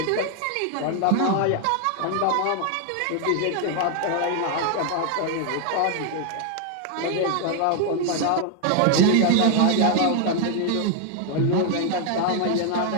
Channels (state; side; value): different; both; correlation 0.00